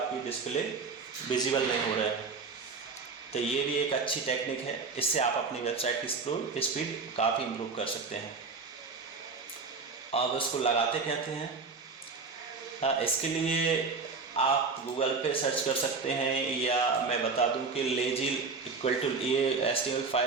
डिस्प्ले विजिबल नहीं हो रहा है। तो ये भी एक अच्छी टेक्निक है, इससे आप अपनी वेबसाइट की स्पीड काफ़ी इम्प्रूव कर सकते हैं। अब इसको लगाते कहते हैं, इसके लिए आप गूगल पे सर्च कर सकते हैं, या मैं बता दूं कि लेजी इक्वल टू ये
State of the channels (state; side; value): quieter; left; 4.5 dB